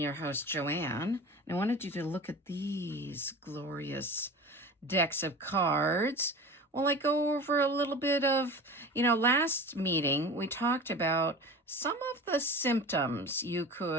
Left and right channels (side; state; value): both; normal; correlation 0.35